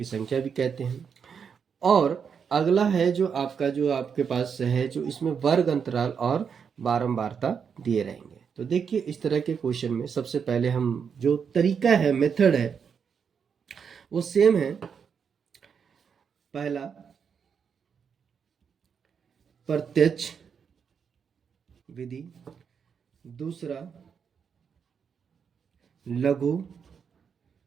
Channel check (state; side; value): quieter; left; 6.7 dB